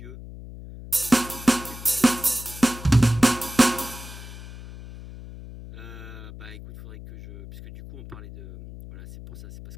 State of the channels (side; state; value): left; noise; hum, 14 dB below the sound